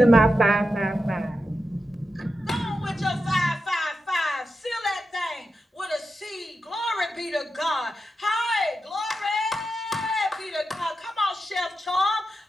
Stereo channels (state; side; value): normal; both; correlation 0.89